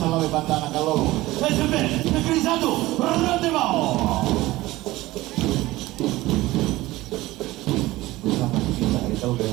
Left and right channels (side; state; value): left; quieter; 18.2 dB